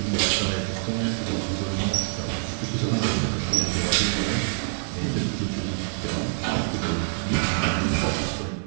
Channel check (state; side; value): silent; left; digital silence